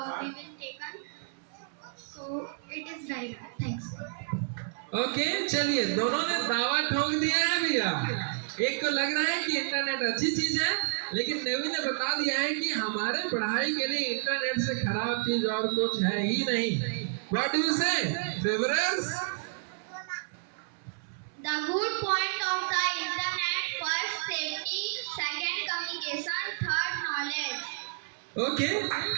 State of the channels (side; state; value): left; silent; 58 dB below the other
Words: taken. So it is very bad. Thanks. Okay चलिए, दोनों ने दावा ठोक दिया है भैया. एक को लग रहा है कि इंटरनेट अच्छी चीज है, लेकिन नेवी ने बता दिया है कि हमारे पढ़ाई के लिए इंटरनेट से खराब चीज और कुछ है ही नहीं. व्हाट डू यू से फेवरर्स? The good point of the internet: first, safety; second, communication; third, knowledge. Okay